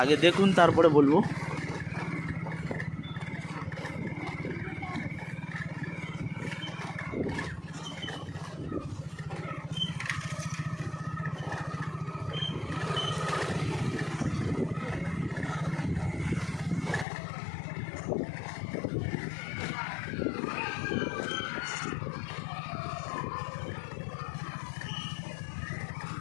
আগে দেখুন তারপরে বলবো।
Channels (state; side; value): drops out; right; at 17.1 s